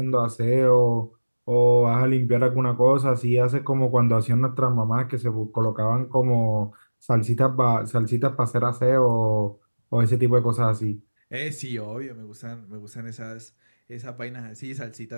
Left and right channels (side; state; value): both; inverted; correlation -1.00